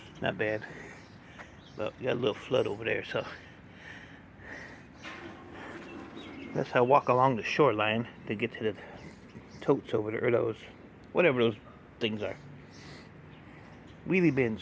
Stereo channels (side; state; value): both; identical; correlation 1.00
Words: not bad. But we got a little flood over there, so that's how I walk along the shoreline to get to the totes over there, or those, whatever those things are. Wheelie bins.